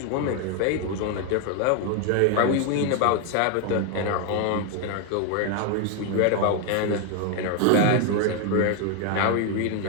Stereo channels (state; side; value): different; both; correlation 0.01